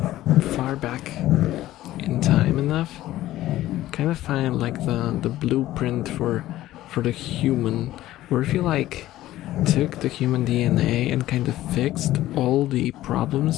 far back in time enough, you kind of find like the blueprint for the human, where if you like took the human DNA and kind of fixed all the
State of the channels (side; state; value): right; quieter; 14.9 dB